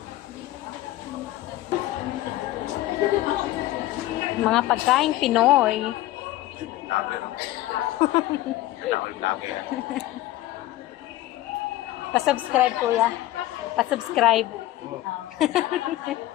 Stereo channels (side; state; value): right; quieter; 15.8 dB